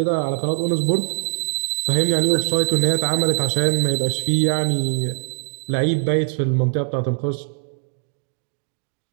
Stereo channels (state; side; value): silent; left; digital silence